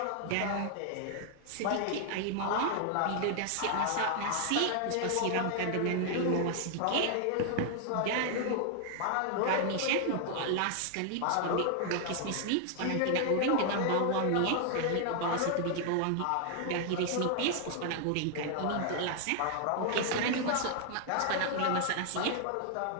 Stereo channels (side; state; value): both; different; correlation 0.00